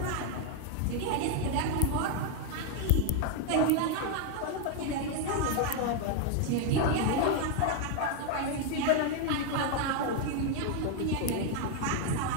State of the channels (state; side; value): different; both; correlation 0.00